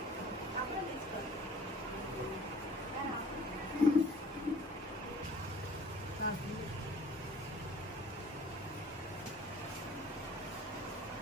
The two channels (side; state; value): both; normal; correlation 0.50